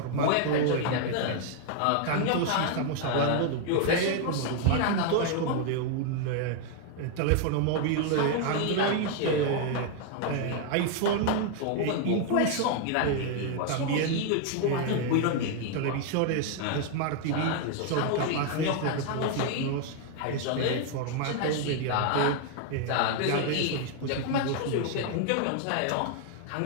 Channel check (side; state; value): both; different; correlation 0.00